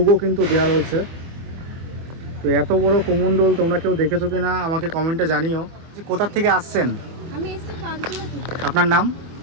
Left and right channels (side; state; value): left; late; 24 ms